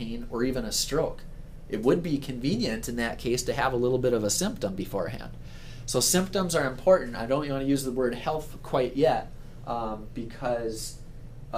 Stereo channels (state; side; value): identical; both; correlation 1.00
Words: or even a stroke. It would be convenient in that case to have a little bit of a symptom beforehand. So symptoms are important. I don't want to use the word health quite yet because